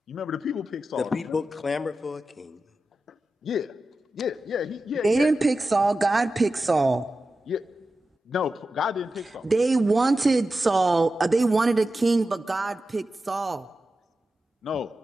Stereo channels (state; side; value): normal; both; correlation 0.92